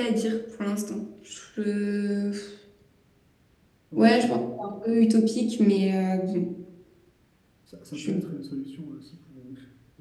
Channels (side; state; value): both; identical; correlation 1.00